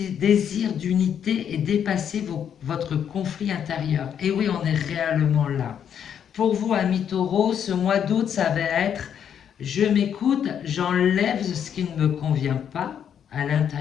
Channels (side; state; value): right; quieter; 8.6 dB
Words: d'unité et dépassez votre conflit intérieur. Et oui, on est réellement là. Pour vous, amis taureaux, ce mois d'août, ça va être je m'écoute, j'enlève ce qui ne me convient pas à